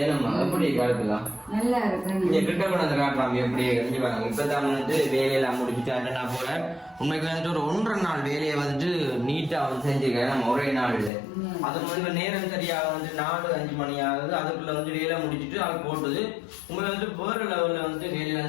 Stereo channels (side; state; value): right; drops out; at 11.1 s